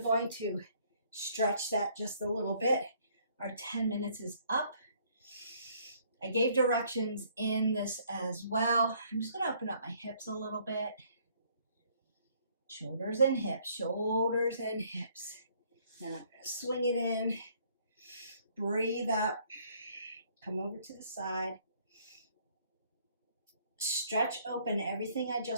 going to stretch that just a little bit. Our 10 minutes is up. I gave directions in this as well. I'm just gonna open up my hips a little bit. Shoulders and hips, shoulders and hips. Now I'm gonna swing it in, breathe up, come over to the side, stretch open everything I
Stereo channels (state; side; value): inverted; both; correlation -0.63